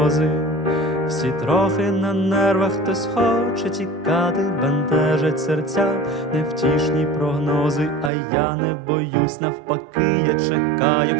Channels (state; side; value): drops out; left; at 8.1 s